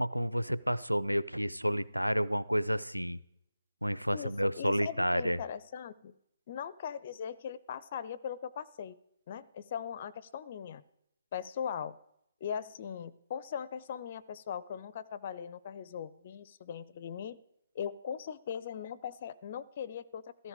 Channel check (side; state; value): both; inverted; correlation -0.90